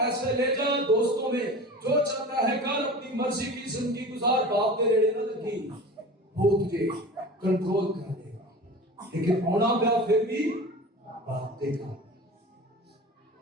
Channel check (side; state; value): both; normal; correlation 0.35